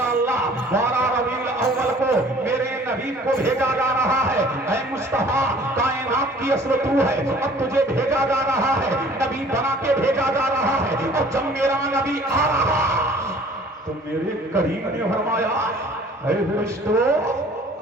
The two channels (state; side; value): normal; both; correlation 0.51